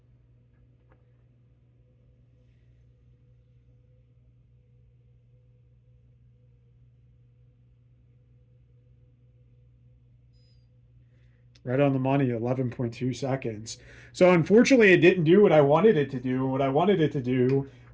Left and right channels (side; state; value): both; identical; correlation 1.00